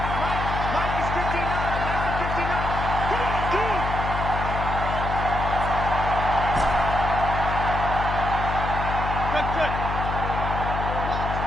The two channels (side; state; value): left; noise; hum, 3 dB below the sound